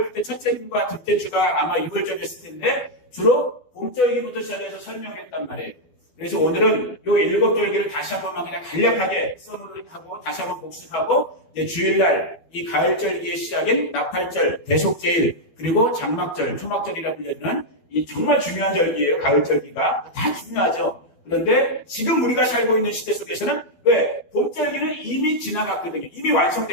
그때 첫째 주와 둘째 주가 아마 6월절이었을 텐데 주로 봄절기부터 시작해서 설명했단 말이에요. 그래서 오늘은 요 7절기를 다시 한 번만 그냥 간략하게 써놓고 다시 한번 복습하고 이제 주일날 이 가을절기의 시작인 나팔절, 대속제일, 그리고 장막절, 초막절이라 불리는 이 정말 중요한 절기예요. 가을절기가 다 중요하죠. 그런데 지금 우리가 살고 있는 시대 속에서는 왜? 봄절기는 이미 지나갔거든요. 이미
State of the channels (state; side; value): late; right; 12 ms